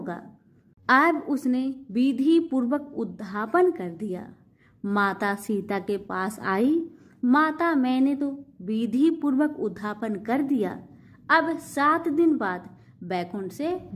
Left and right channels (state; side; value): identical; both; correlation 1.00